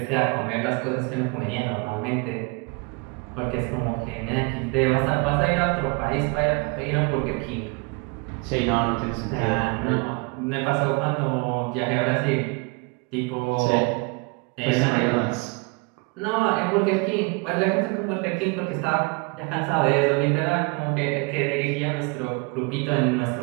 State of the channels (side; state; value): left; quieter; 29.6 dB